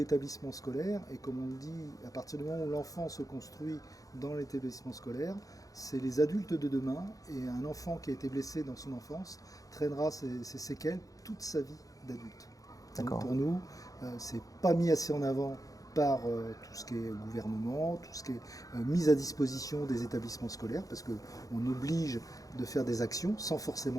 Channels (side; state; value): right; late; 0.17 ms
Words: scolaires, et comme on le dit, à partir du moment où l'enfant se construit dans l'établissement scolaire, c'est les adultes de demain, et un enfant qui a été blessé dans son enfance traînera ses séquelles toute sa vie d'adulte. Donc pour nous, c'est pas mis assez en avant par tout ce qui est gouvernement, tout ce qui est mise à disposition des établissements scolaires, parce qu'on oblige de faire des actions sans